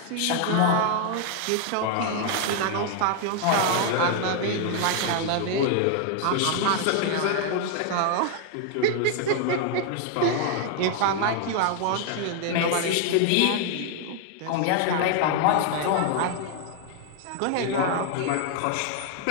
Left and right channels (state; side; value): different; both; correlation 0.00